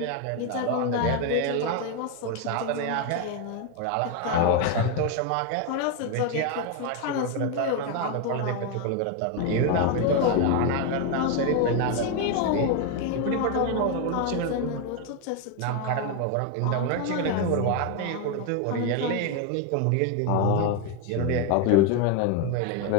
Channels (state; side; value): different; both; correlation 0.01